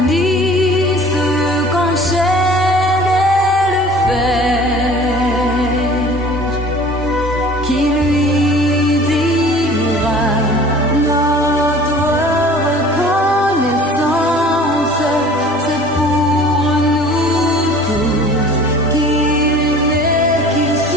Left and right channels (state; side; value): normal; both; correlation 0.47